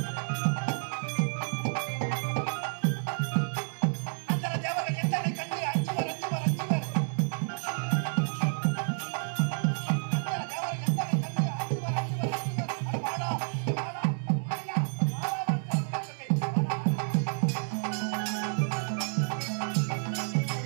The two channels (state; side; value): silent; left; digital silence